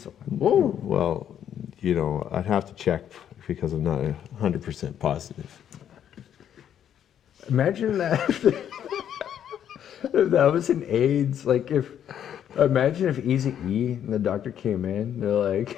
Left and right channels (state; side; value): quieter; right; 9.7 dB